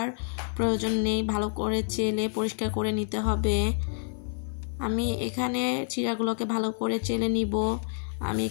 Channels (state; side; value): silent; right; 56 dB below the other